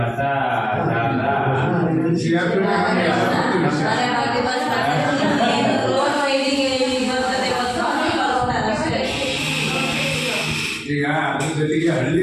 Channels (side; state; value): both; identical; correlation 1.00